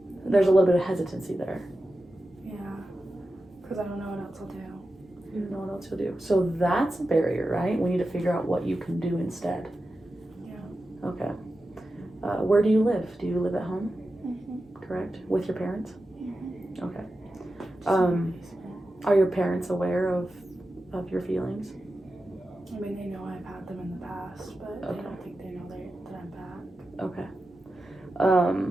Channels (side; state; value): both; normal; correlation 0.92